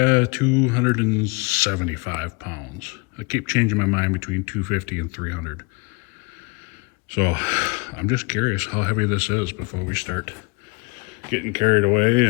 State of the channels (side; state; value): right; quieter; 28.5 dB